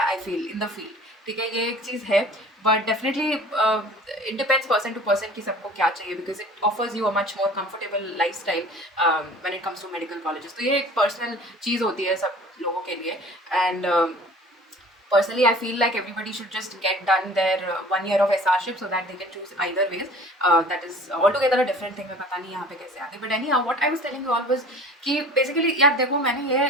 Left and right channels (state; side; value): normal; both; correlation 0.45